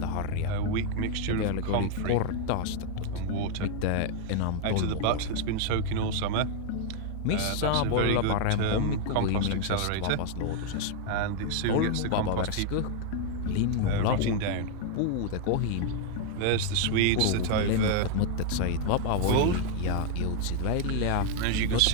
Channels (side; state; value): both; different; correlation 0.00